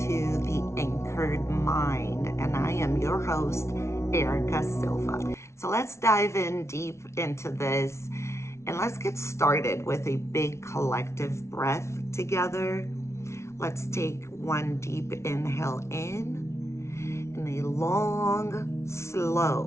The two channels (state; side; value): late; right; 0.13 ms